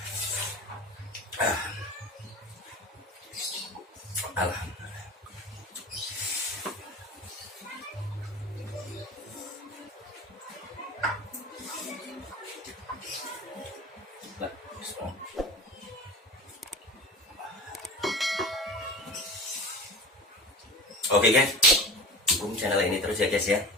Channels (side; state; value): both; normal; correlation 0.33